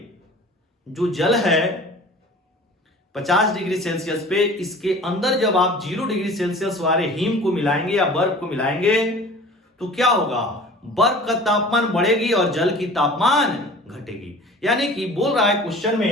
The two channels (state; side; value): normal; both; correlation 0.43